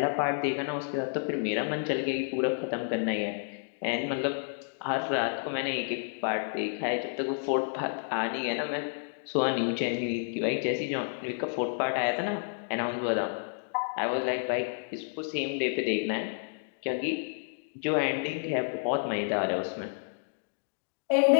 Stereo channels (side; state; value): right; silent; digital silence